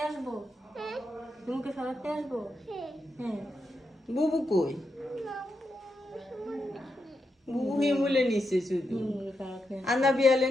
বুবু কই? বুবু হিমুলে নিছে শুধু, আন্না বিয়ালে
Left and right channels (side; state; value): both; normal; correlation 0.85